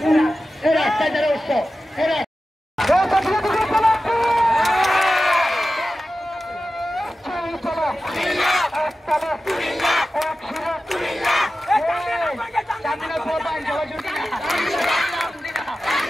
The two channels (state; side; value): normal; both; correlation 0.94